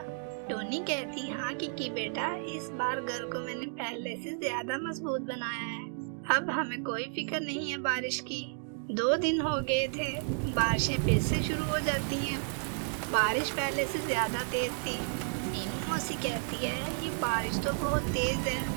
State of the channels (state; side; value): silent; left; 56 dB below the other